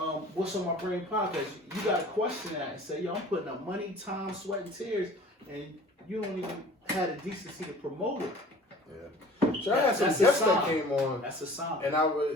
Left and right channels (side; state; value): both; normal; correlation 0.46